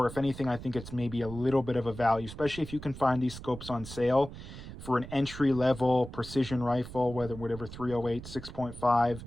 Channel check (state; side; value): noise; right; rumble, 13 dB below the sound